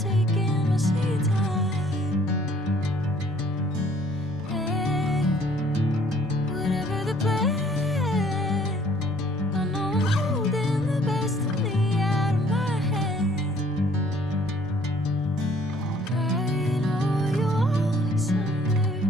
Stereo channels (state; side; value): normal; both; correlation 0.59